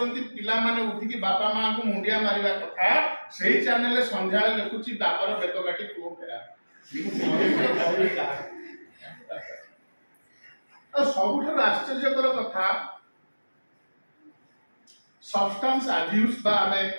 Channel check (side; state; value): both; inverted; correlation -1.00